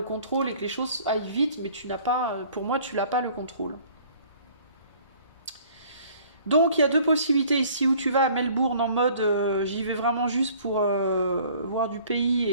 contrôle et que les choses aillent vite, mais tu n'as pas, pour moi, tu n'as pas le contrôle. Donc, il y a deux possibilités ici, où tu vas à Melbourne en mode j'y vais vraiment juste pour voir du pays,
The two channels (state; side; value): inverted; both; correlation -0.54